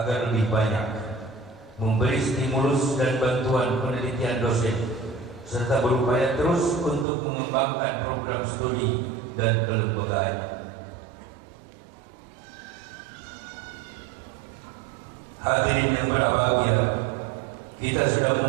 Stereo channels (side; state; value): left; drops out; at 7.1 s